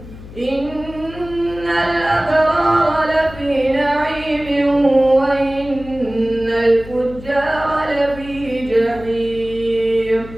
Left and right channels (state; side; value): noise; left; hum, 16 dB below the sound